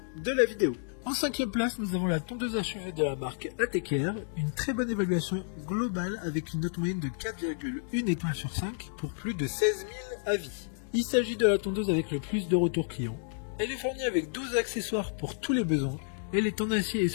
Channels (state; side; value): silent; right; digital silence